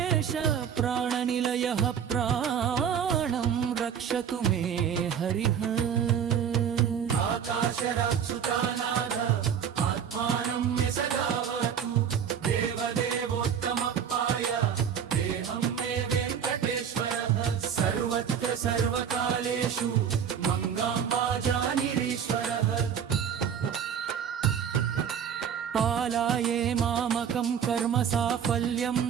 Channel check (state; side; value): quieter; left; 8.0 dB